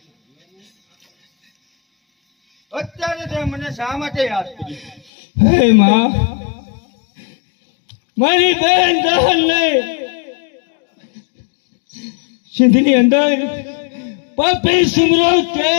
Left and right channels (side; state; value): right; drops out; at 5.0 s